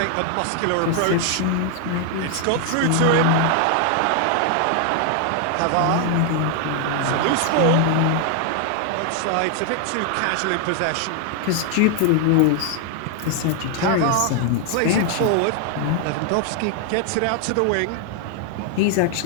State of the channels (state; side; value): different; both; correlation 0.00